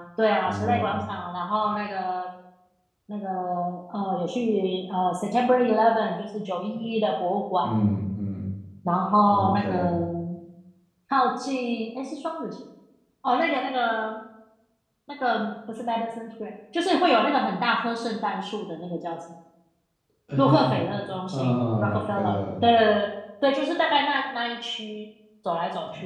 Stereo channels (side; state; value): both; identical; correlation 1.00